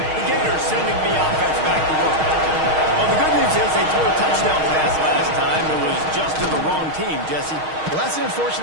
Sending the offense back to work. Well, the good news is they threw a touchdown pass last time. It was just to the wrong team, Jesse. Well, that's an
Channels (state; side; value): late; left; 6.4 ms